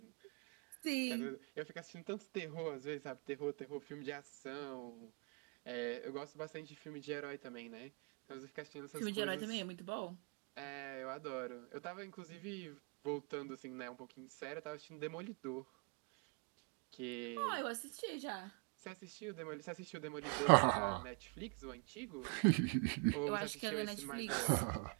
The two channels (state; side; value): quieter; left; 34.0 dB